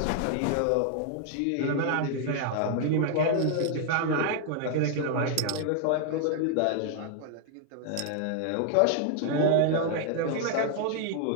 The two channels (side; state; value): both; different; correlation 0.00